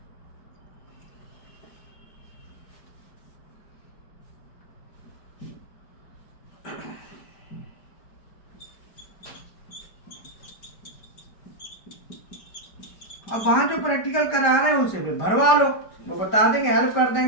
अब वहां जो प्रैक्टिकल करा रहे हैं उसे फिर भरवा लो, वो बता देंगे, हेल्प कर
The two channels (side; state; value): right; late; 5.0 ms